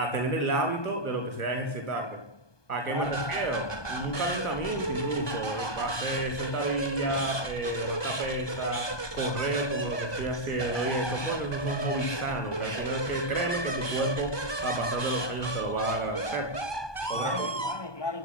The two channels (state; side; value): late; right; 1.2 ms